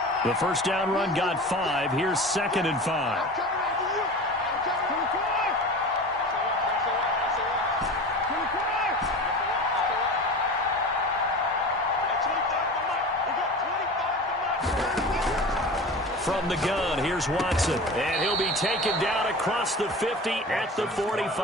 The first down run got 5. Here's 2nd and 5. From the gun, here's Watson. And he'll be taken down across the 50 at the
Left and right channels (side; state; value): both; normal; correlation 0.34